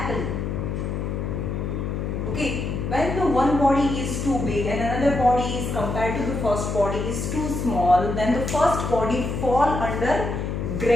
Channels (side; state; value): left; noise; hum, 3 dB below the sound